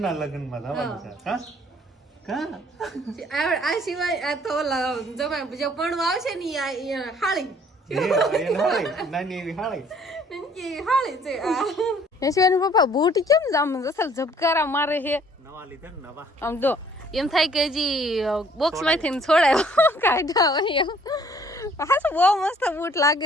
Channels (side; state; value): both; normal; correlation 0.59